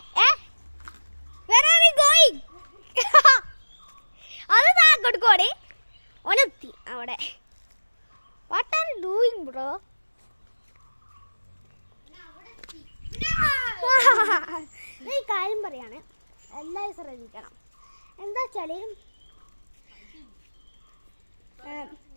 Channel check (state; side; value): inverted; both; correlation -1.00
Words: Where are we going? അത് കൊടുക്കോടെ ഒനെത്തി അവിടെ. What are you doing bro? ഈ കാര്യം പറയാണ്, എല്ലാവരും ശ്രദ്ധിക്കണം. എന്താ വെച്ചാൽ